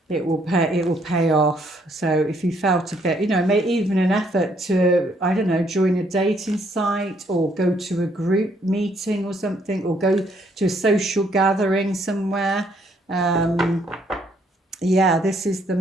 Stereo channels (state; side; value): normal; both; correlation 0.69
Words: It will pay off. So if you felt a bit, you know, make even an effort to, I don't know, join a dating site or go to a group meeting or something, or go to a social gathering somewhere. Yeah, this is the